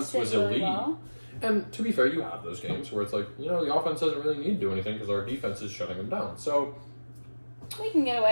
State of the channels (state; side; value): inverted; both; correlation -1.00